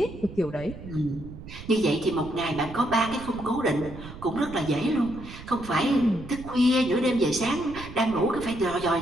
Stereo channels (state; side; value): noise; right; rumble, 14 dB below the sound